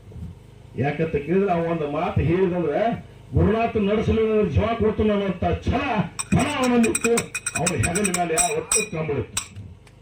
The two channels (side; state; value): both; identical; correlation 1.00